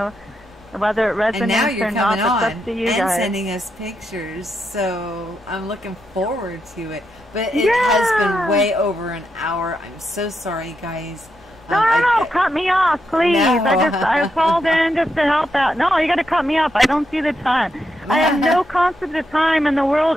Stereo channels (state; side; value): normal; both; correlation 0.83